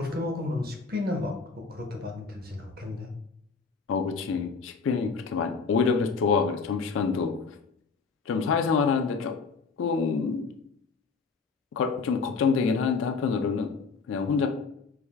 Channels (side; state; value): right; quieter; 4.8 dB